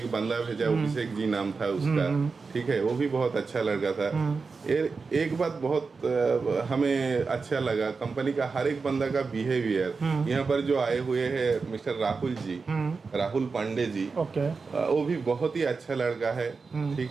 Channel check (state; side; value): quieter; left; 4.6 dB